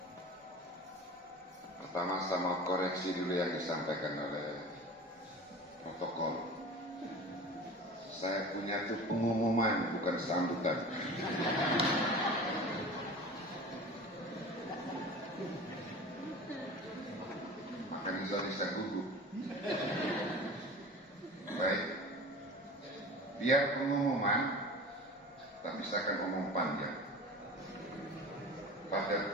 Pertama saya mau koreksi dulu yang disampaikan oleh protokol. Saya punya itu pengumuman, bukan sambutan. Makanya saya gugup. Baik. Biar pengumuman, tapi saya akan ngomong panjang.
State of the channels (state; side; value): normal; both; correlation 0.37